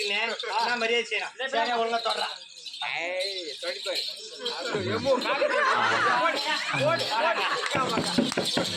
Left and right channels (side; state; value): both; identical; correlation 1.00